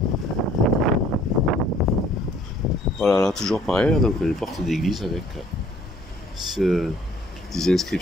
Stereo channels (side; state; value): both; normal; correlation 0.58